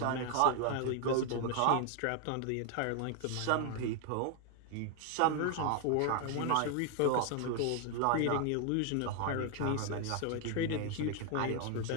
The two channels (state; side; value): different; both; correlation 0.00